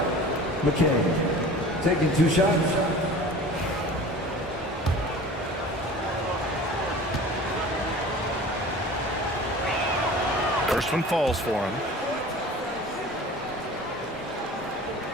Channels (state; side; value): normal; both; correlation 0.41